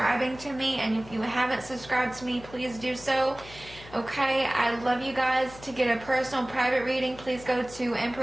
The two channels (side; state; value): left; noise; hum, 18 dB below the sound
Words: to me, and if you haven't subscribed to me, please do so. Okay, I love you guys. To get a personal private reading, please go to